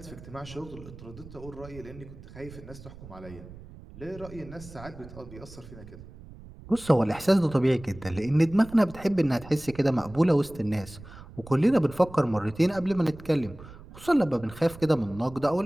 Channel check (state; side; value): noise; right; rumble, 17 dB below the sound